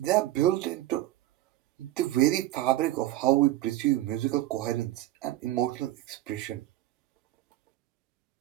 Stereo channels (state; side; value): quieter; left; 15.6 dB